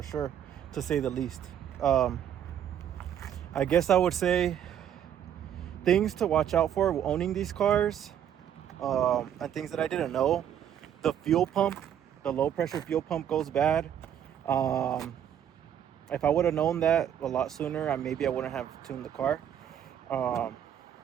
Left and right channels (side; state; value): left; quieter; 9.7 dB